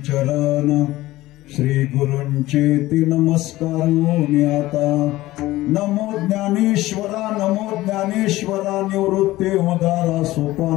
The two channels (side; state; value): right; quieter; 17.2 dB